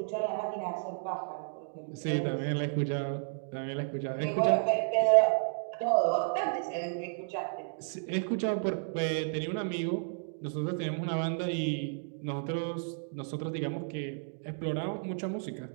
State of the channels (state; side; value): silent; left; digital silence